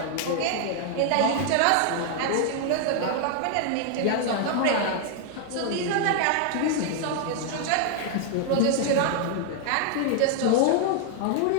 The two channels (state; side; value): different; both; correlation 0.00